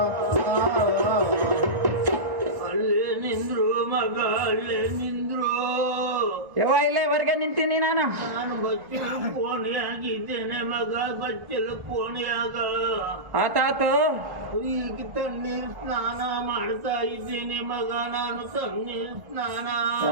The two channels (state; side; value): late; left; 1.6 ms